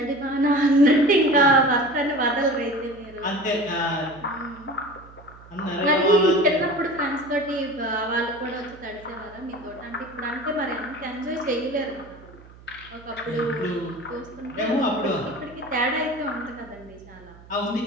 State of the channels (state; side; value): noise; right; hum, 21 dB below the sound